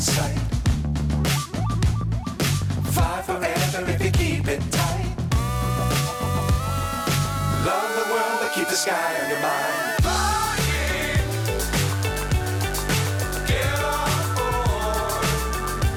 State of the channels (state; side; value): identical; both; correlation 1.00